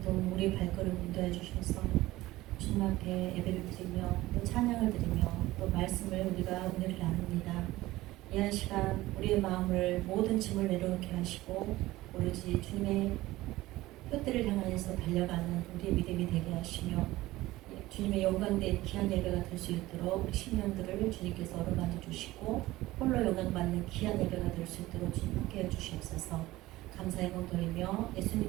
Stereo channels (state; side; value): quieter; left; 17.7 dB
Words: 동안 우리 발걸음 인도해 주셔서 주님 앞에 예배를 드리며 또 찬양을 드리며 또 말씀을 우리가 은혜를 나눕니다. 이 한 시간 우리의 마음을 모든 짐을 내려놓게 하시고 오로지 주님의 뜻들을 향하여서 달려가는 우리의 믿음이 되게 하시며 주님의 영광된 귀한 예배가 될 수 있도록 우리 심령들을 주님께서 어루만져 주시고 홀로 영광받는 귀한 예배가 될 수 있도록 주님 함께해 주시옵소서. 감사의 공 돌리며